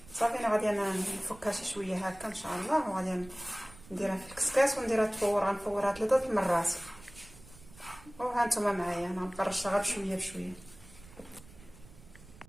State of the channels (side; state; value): right; noise; rumble, 21 dB below the sound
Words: صافي انا غادي نفكها شي شويه هكا ان شاء الله. وغادي نديرها في الكسكاس ونديرها تفور. غنفورها 3 المرات. وها نتوما معايا انا نقرشها غير بشويه بشويه.